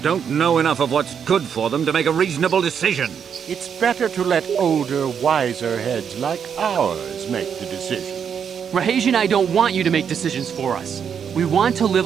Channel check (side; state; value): left; quieter; 7.5 dB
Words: don't know enough of what's good for them to make a reasonable decision. It's better to let older, wiser heads like ours make the decisions. Rahesh and I don't want you to make decisions for us. We want to